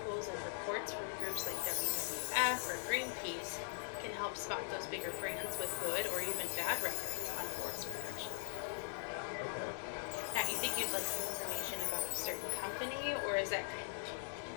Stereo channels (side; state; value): right; silent; 50 dB below the other